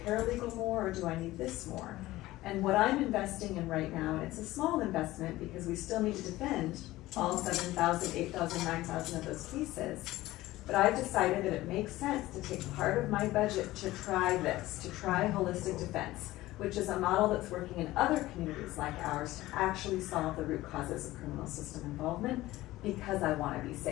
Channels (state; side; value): quieter; right; 17.2 dB